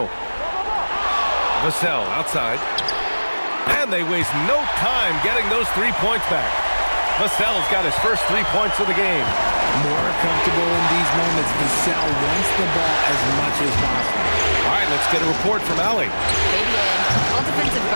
Vassell outside. And they waste no time getting those 3 points back. Vassell's got his first 3 points of the game. More comfortable in these moments. Vassell wants the ball as much as possible. All right, let's get a report from Allie. All defensive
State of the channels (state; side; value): inverted; both; correlation -1.00